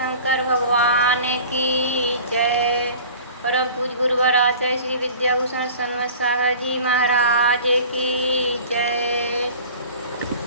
भगवान की जय। परम पूज गुरुवर आचार्य श्री विद्याभूषण सन्मत सागर जी महाराज की जय।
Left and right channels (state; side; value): inverted; both; correlation -0.43